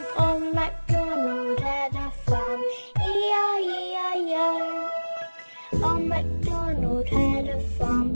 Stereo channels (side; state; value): both; inverted; correlation -1.00